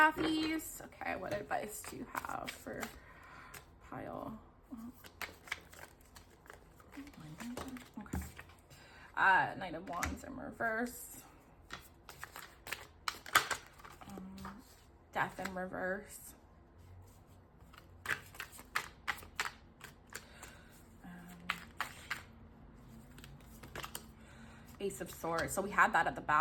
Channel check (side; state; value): both; identical; correlation 1.00